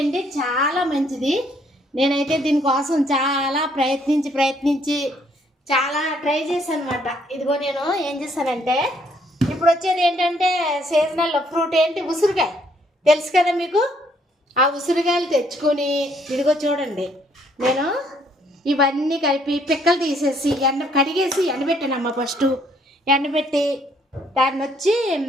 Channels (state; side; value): normal; both; correlation 0.67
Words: చాలా మంచిది. నేనైతే దీనికోసం చాలా ప్రయత్నించి చాలా ట్రై చేశాను అనమాట. ఇదిగో నేను ఏం చేశానంటే, ఇప్పుడు వచ్చేది ఏంటంటే సీజనల్ ఫ్రూట్ ఏంటి, ఉసిరికాయ. తెలుసు కదా మీకు. ఆ ఉసిరికాయలు తెచ్చుకొని ఇదిగో చూడండి, నేను ఇవన్నీ కలిపి పిక్కలు తీసేసి కడిగేసి ఎండబెట్టానమ్మ. ఫస్ట్ ఎండబెట్టి దాన్ని వచ్చి